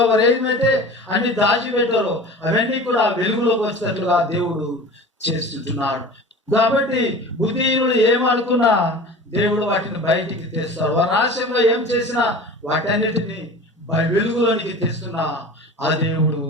వారు ఏమైతే అన్ని దాచిపెట్టారో అవన్నీ కూడా వెలుగులోకి వచ్చేటట్లుగా దేవుడు చేస్తుంటున్నాడు. కాబట్టి బుద్ధిహీనులు ఏమనుకున్నా దేవుడు వాటిని బయటికి తెస్తాడు. వారు రహస్యంగా ఏం చేసినా వాటన్నిటిని వెలుగులోనికి తెస్తున్నా ఆ దేవుడు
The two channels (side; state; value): both; normal; correlation 0.38